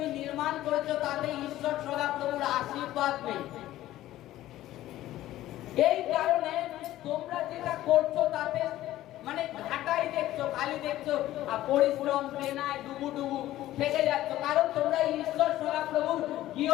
নির্মাণ করেছো তাতে ঈশ্বর সদাপ্রভুর আশীর্বাদ নেই। এই কারণে তোমরা যেটা করছো তাতে মানে ঘাটাই দেখছো, খালি দেখছো, আর পরিশ্রম প্রেরণায় ডুবু থেকে যাচ্ছ। কারণ তোমরা ঈশ্বর সদাপ্রভুর গৃহ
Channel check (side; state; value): right; quieter; 14.7 dB